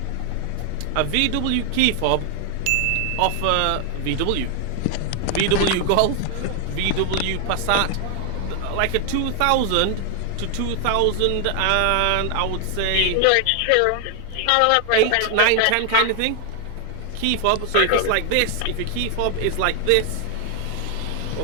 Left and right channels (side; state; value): both; different; correlation 0.00